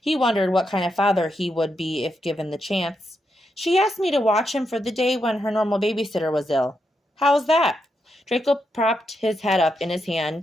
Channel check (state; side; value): normal; both; correlation 0.83